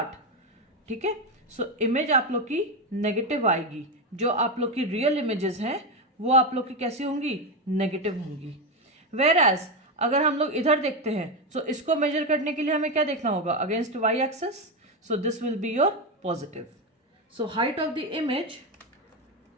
ठीक है। सो इमेज आप लोग की नेगेटिव आएगी, जो आप लोग की रियल इमेजेस हैं वो आप लोग की कैसी होंगी, नेगेटिव होंगी। वेयर एज अगर हम लोग इधर देखते हैं, सो इसको मेजर करने के लिए हमें क्या देखना होगा, against Y axis, so this will be your positive. So height of the image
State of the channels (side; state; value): both; normal; correlation 0.11